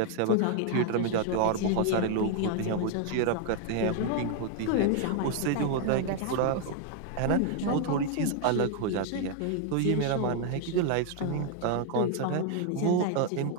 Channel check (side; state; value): both; different; correlation 0.00